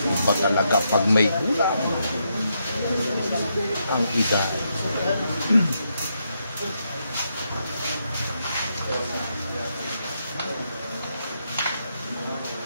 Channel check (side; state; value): both; inverted; correlation -0.80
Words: Iba talaga pag may gulang ang edad.